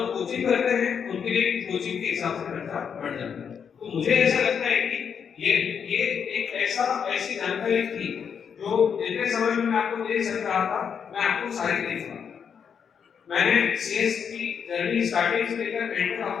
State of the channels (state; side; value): quieter; right; 7.1 dB